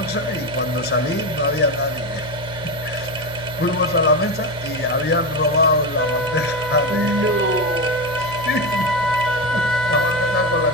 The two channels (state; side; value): noise; right; hum, 14 dB below the sound